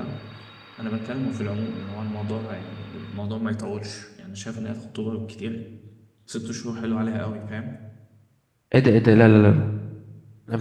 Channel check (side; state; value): both; identical; correlation 1.00